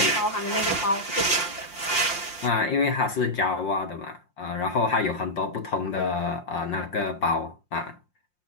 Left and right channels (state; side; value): late; right; 5.7 ms